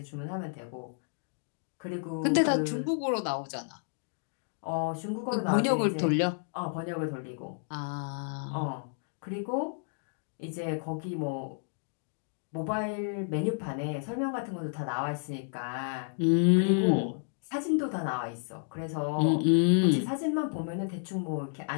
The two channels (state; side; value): silent; right; digital silence